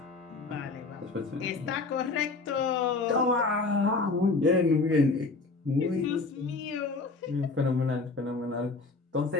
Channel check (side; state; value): right; quieter; 3.8 dB